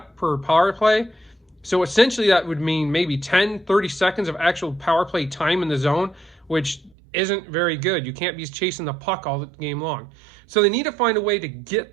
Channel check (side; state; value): left; drops out; at 7.0 s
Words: per power play. So essentially, that would mean maybe 10, 30 seconds of actual power play time in the zone, which isn't very good. You can't be chasing the puck all the game long. So they need to find a way to